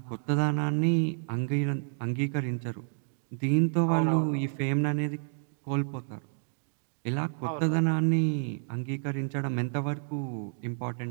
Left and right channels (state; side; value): silent; left; digital silence